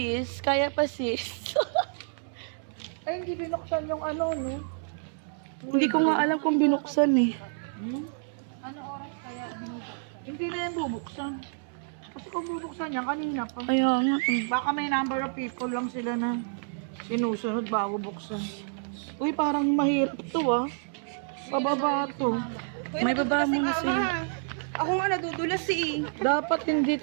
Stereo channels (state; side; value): silent; left; digital silence